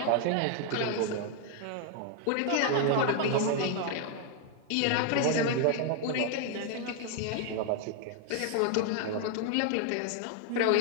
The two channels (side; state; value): both; different; correlation 0.01